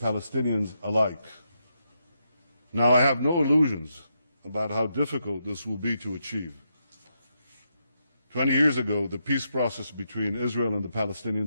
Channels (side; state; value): both; inverted; correlation -0.82